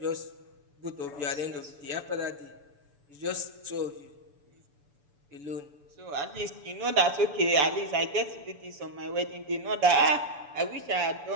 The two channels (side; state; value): left; late; 6.9 ms